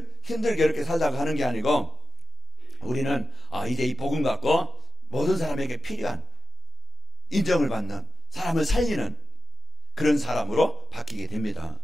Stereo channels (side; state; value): both; normal; correlation 0.92